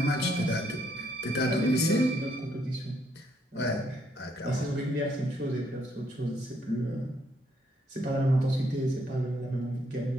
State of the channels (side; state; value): both; normal; correlation 0.72